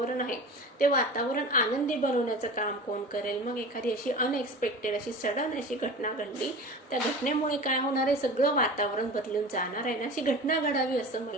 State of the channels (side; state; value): both; normal; correlation 0.35